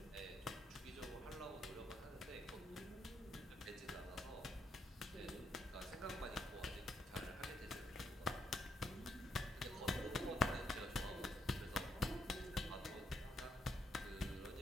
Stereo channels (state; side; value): normal; both; correlation 0.75